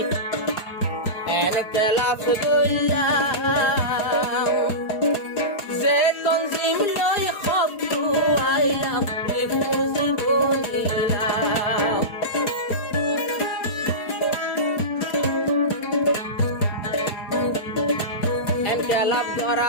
এনকেলাফ দইলাম যে তঞ্জিম লই খবু আইলাম রিফুজি বলিলাম এনকেলাফ ধরা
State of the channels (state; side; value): late; right; 4.8 ms